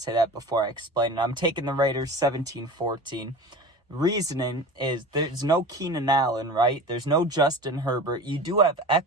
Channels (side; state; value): both; normal; correlation 0.35